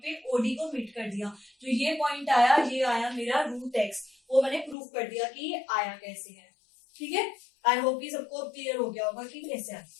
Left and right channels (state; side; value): drops out; right; at 4.8 s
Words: पे, OD को मीट कर दिया, तो ये पॉइंट आया, ये आया मेरा रूट x, वो मैंने प्रूफ कर दिया कि ये आया कैसे है, ठीक है। आई होप कि सबको क्लियर हो गया होगा कि कैसे आया।